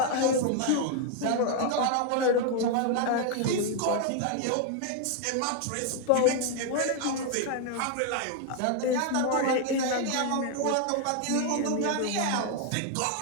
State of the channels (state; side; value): different; both; correlation 0.00